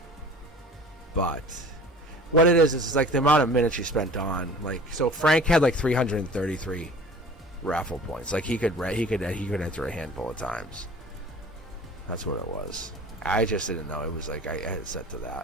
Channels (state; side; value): normal; both; correlation 0.44